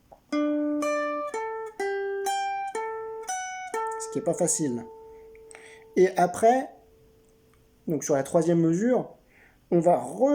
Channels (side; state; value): both; identical; correlation 1.00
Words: Ce qui n'est pas facile. Et après, donc sur la troisième mesure, on va